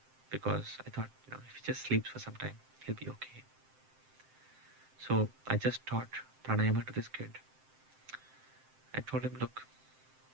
because I thought, if he just sleeps for some time, he'll be okay. So I just taught pranayama to this kid. I told him, look,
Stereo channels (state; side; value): late; left; 7.7 ms